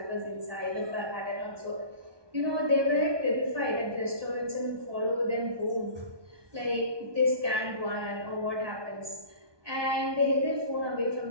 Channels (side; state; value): left; late; 1.2 ms